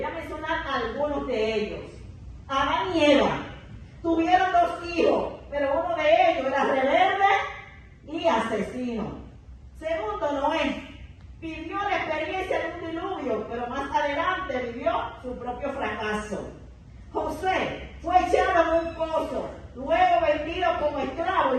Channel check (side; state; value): both; identical; correlation 1.00